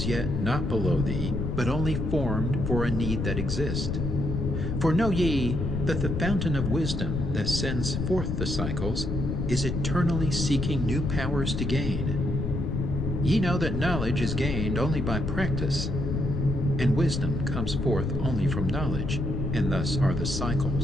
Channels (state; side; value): noise; left; rumble, 2 dB below the sound